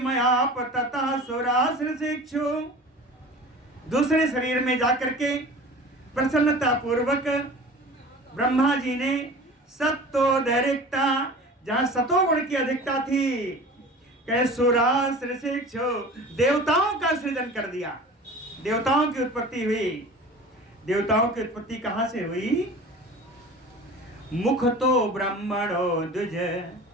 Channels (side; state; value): both; normal; correlation 0.39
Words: ततः सुरासुर शिक्षु, दूसरे शरीर में जाकर के प्रसन्नता पूर्वक ब्रह्मा जी ने सत्वोदरिक्ता, जहां सतोगुण की अधिकता थी, कहे सुरासुर शिक्षु, देवताओं का सृजन कर दिया। देवताओं की उत्पत्ति हुई। देवताओं की उत्पत्ति कहां से हुई? मुख तो ब्रह्मणो द्विज,